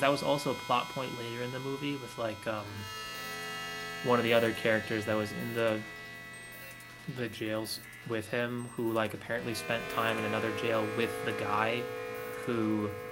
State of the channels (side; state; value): both; identical; correlation 1.00